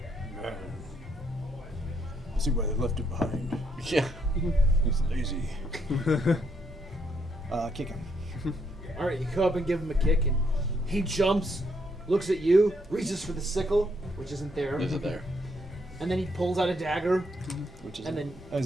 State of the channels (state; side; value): normal; both; correlation 0.73